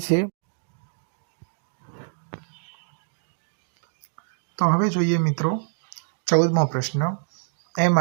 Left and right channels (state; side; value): silent; left; digital silence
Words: है। तो हवे जोईए मित्रों 14मो प्रश्न।